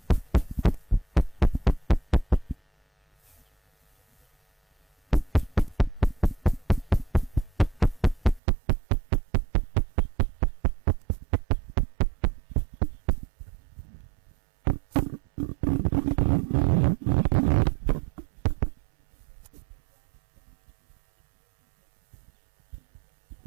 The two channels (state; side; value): drops out; left; at 8.4 s